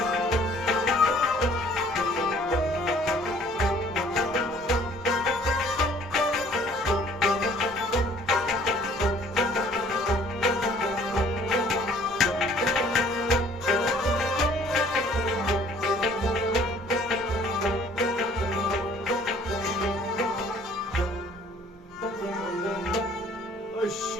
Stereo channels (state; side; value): normal; both; correlation 0.56